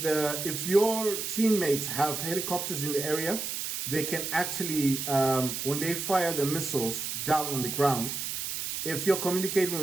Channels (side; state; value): right; noise; hiss, 4 dB below the sound